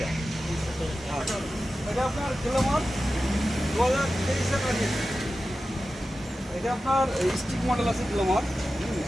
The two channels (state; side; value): normal; both; correlation 0.93